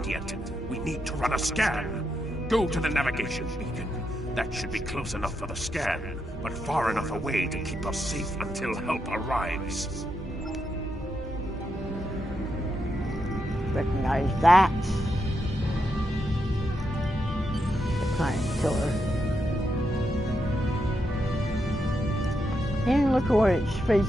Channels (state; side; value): normal; both; correlation 0.83